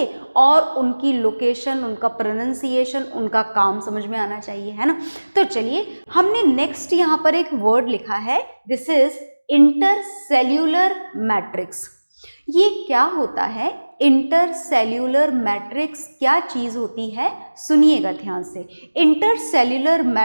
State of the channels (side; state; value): both; inverted; correlation -1.00